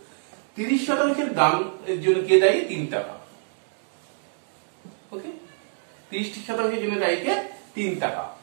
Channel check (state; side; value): silent; left; digital silence